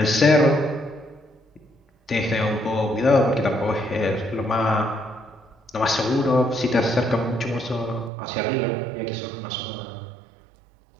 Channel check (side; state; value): left; drops out; at 8.1 s